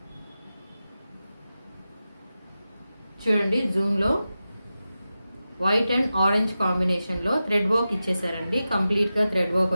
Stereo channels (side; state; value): both; inverted; correlation -0.93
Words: చూడండి జూమ్లో వైట్ అండ్ ఆరెంజ్ కాంబినేషన్లో థ్రెడ్ వర్క్ ఇచ్చేసారండి. కంప్లీట్గా థ్రెడ్ వర్క్